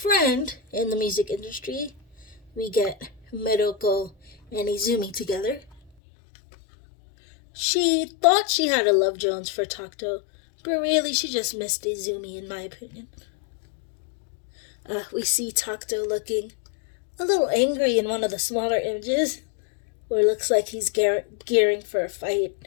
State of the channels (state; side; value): drops out; right; at 5.9 s